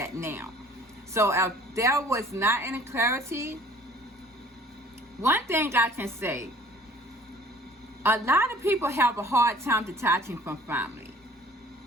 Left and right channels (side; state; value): both; normal; correlation 0.52